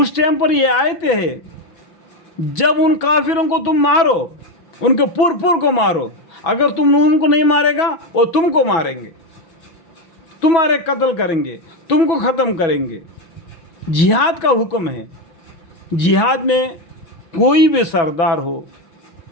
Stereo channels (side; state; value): right; late; 6.1 ms